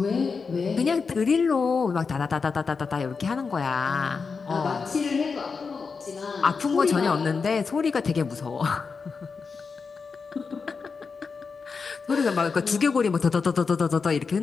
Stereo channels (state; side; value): quieter; right; 5.1 dB